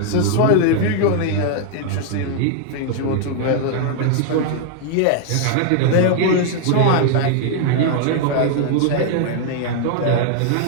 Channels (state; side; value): different; both; correlation 0.00